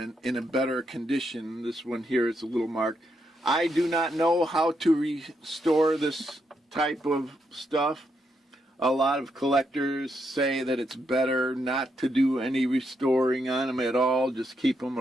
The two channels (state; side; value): normal; both; correlation 0.80